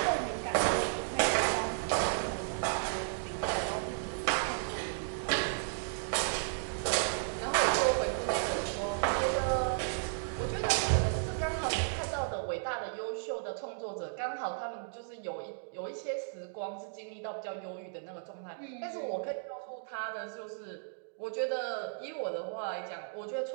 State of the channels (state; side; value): silent; left; digital silence